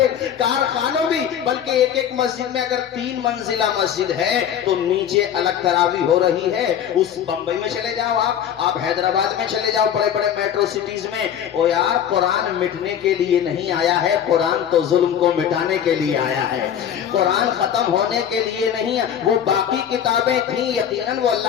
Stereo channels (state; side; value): quieter; right; 9.2 dB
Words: کارخانوں بھی. بلکہ ایک مسجد میں اگر 3 منزلہ مسجد ہے تو نیچے الگ تراویح ہو رہی ہے. اس بمبئی میں چلے جاؤ، آپ حیدرآباد میں چلے جاؤ، بڑے بڑے میٹرو سٹیز میں. او یار قرآن مٹنے کے لیے نہیں آیا ہے، قرآن تو ظلم کو مٹانے کے لیے آیا ہے. قرآن ختم ہونے کے لیے نہیں. وہ باقی کتابیں تھیں یقیناً وہ